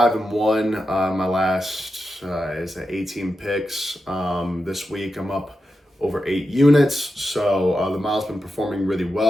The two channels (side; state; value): both; normal; correlation 0.89